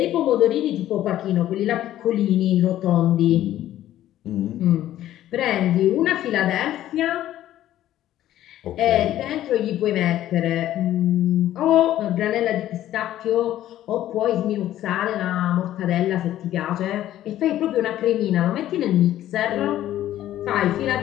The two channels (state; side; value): quieter; right; 13.0 dB